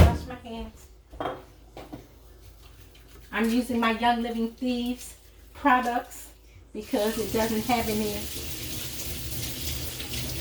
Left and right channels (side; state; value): both; identical; correlation 1.00